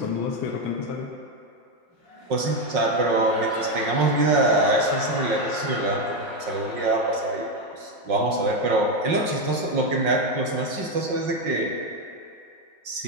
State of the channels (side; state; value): left; late; 5.5 ms